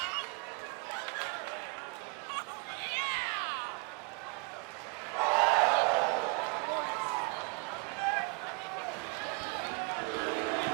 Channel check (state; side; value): quieter; left; 32.6 dB